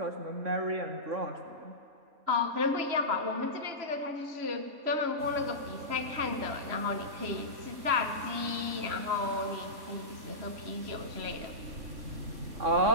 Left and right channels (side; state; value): left; late; 3.4 ms